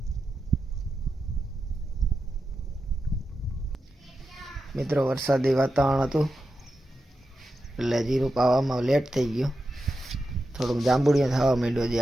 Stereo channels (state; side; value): normal; both; correlation 0.89